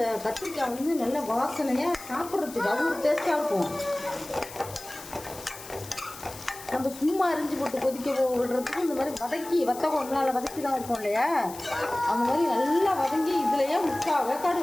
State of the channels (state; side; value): noise; left; hiss, 15 dB below the sound